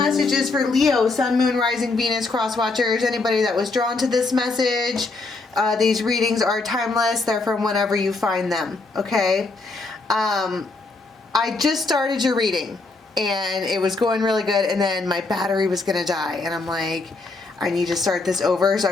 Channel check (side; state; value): right; quieter; 3.5 dB